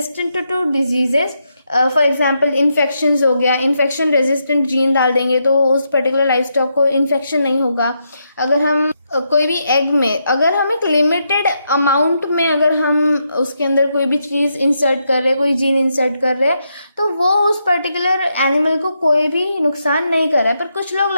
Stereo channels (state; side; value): inverted; both; correlation -0.81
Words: to diseases. For example infection हो गया, इन्फेक्शन रेजिस्टेंट जीन डाल देंगे तो उस पर्टिकुलर लाइफ स्टॉक को इन्फेक्शन नहीं होगा। अगर हम कोई भी एग में अगर हम एक लिमिटेड अमाउंट में अगर हम उसके अंदर कोई भी चीज़ इंसर्ट कर रहे हैं, कोई जीन इंसर्ट कर रहे हैं, तो वो उस पर्टिकुलर एनिमल को कोई भी नुकसान नहीं कर रहा है। पर कुछ लोग